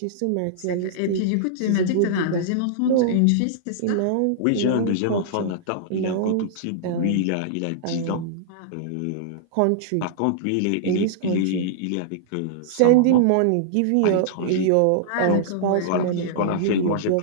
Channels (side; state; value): both; different; correlation -0.02